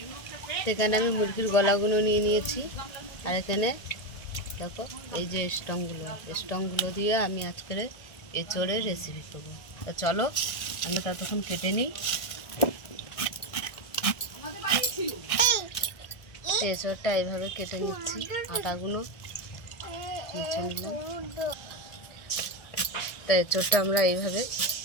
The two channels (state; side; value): late; right; 1.6 ms